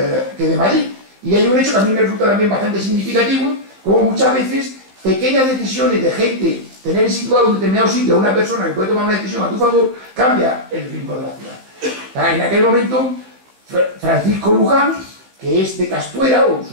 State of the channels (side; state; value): left; late; 15 ms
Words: de Madrid. Y hay un hecho que a mí me resulta también bastante significativo, como muchas veces pequeñas decisiones de gente, tener situado en un determinado sitio a una persona que puede tomar una decisión a tu favor, cambia el ritmo de la ciudad. En aquel momento, Francisco Luján, que es de Castuera, o